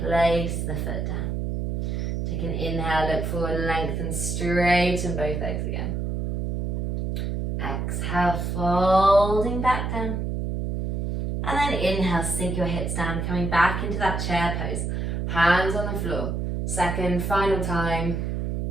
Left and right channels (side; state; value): right; noise; hum, 2 dB below the sound